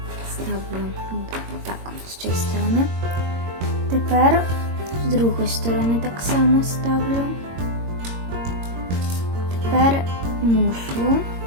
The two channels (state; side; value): late; left; 22 ms